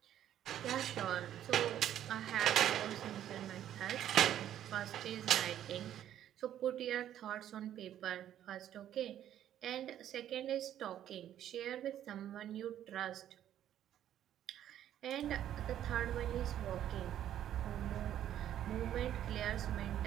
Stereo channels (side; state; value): left; quieter; 11.2 dB